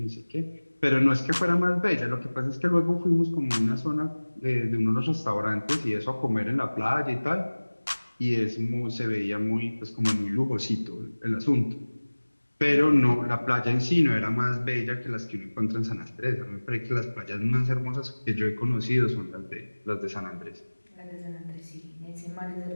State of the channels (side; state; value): both; inverted; correlation -1.00